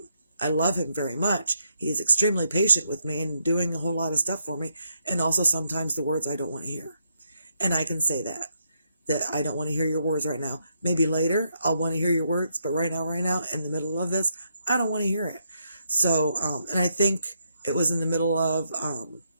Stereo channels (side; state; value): both; inverted; correlation -0.78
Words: I love him very much. He is extremely patient with me and doing a whole lot of stuff for me. And also sometimes the words I don't want to hear. And I can say that I don't want to hear your words right now. Maybe later I'll want to hear your words, but right now, in the middle of this, I don't want to hear it. So, and I think it was in the middle of,